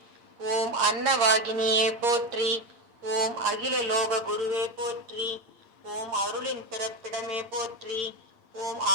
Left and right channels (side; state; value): left; late; 8.6 ms